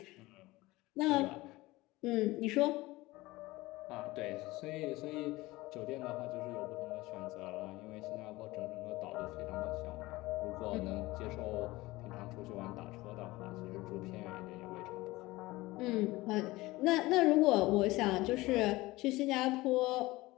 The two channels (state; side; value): quieter; right; 19.8 dB